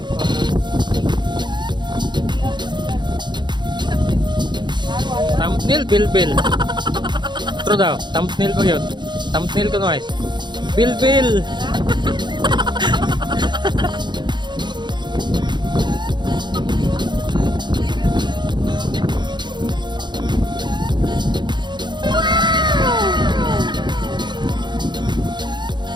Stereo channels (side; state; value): left; late; 0.22 ms